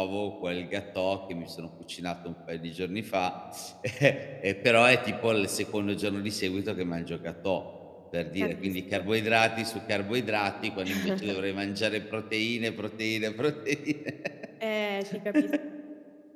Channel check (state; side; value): identical; both; correlation 1.00